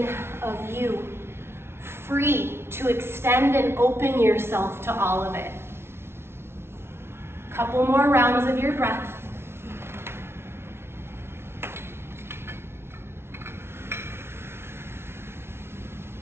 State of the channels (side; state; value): left; late; 0.12 ms